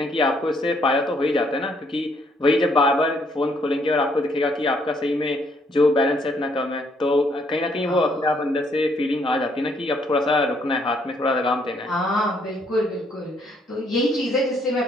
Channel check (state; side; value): normal; both; correlation 0.69